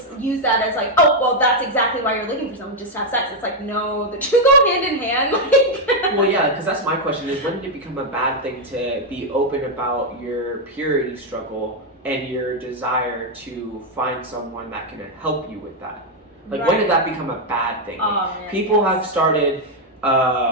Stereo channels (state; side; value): normal; both; correlation 0.01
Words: use that as like, oh, well, that's exactly why you're looking for someone, just to have sex. It's like, no, the two go hand in hand. Well, yeah, because that's my question is, when did it become a bad thing to be open about your purity struggle and your desire to find someone that can help you with that? Like, when did that become a bad thing? Like, people have started